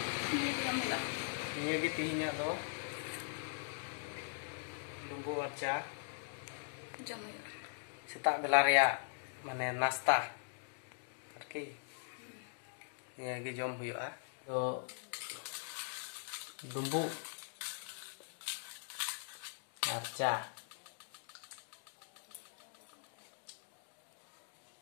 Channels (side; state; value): right; silent; digital silence